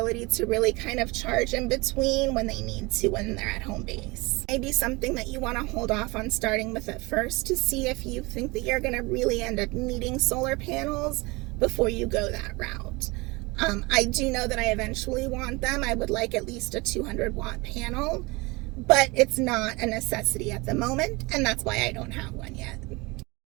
to really kind of charge in between when they need to when they're at home base. Maybe something that you want to hold off on starting with at first to see if you think that you're going to really end up needing solar panels before you go that route. I do know that I eventually want them. I would like at least a 200-watt panel, but it's not a necessity at the moment, and that's why I don't have one yet.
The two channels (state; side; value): quieter; left; 24.8 dB